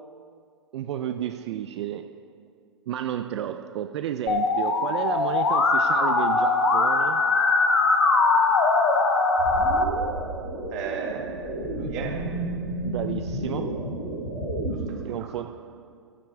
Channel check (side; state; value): both; normal; correlation 0.37